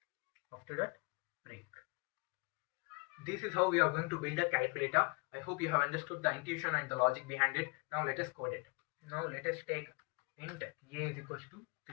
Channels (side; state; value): right; quieter; 32.4 dB